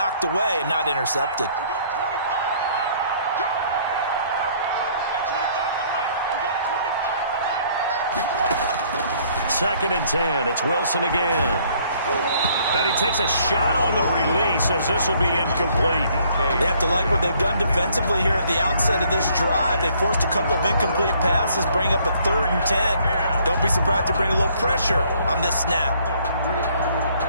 away and not intercepted. Second and 10. It's Wilson again. And he takes a shot on the release as this will be incomplete. They have to like what they've done defensively here at the outset of this drive. They forced a couple of incomplete passes, bring up a 3rd and 10. Don't be surprised to bring a little pressure on this snap.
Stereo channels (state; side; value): inverted; both; correlation -0.62